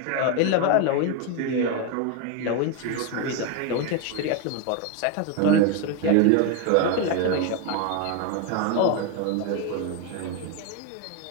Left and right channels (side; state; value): both; different; correlation 0.01